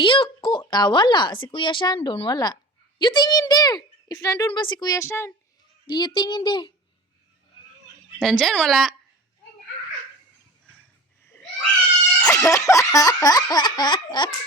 ko. Wala. Si Kuya Shan doon. Wala. You tingin there. If nandun ba si Kuya Shan? Giyo tingin there. Nandyan, wala.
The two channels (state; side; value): normal; both; correlation 0.36